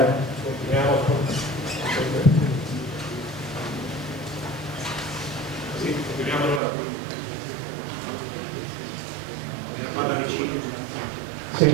Continuiamo allora. Parla vicino. Sì,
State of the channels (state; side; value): drops out; left; at 6.6 s